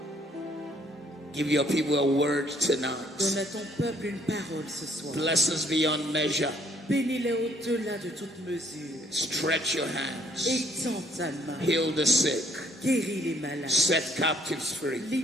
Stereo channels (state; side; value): normal; both; correlation 0.64